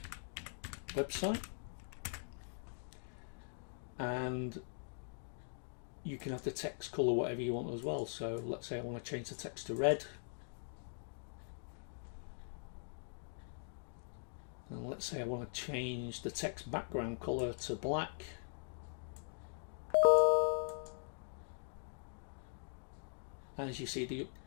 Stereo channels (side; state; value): right; silent; digital silence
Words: website, and you can have the text color whatever you want as well. So let's say I want to change the text to red, and let's say I want to change the text background color to black. As you see, the